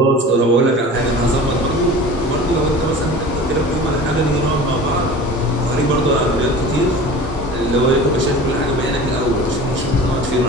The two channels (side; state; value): both; normal; correlation 0.39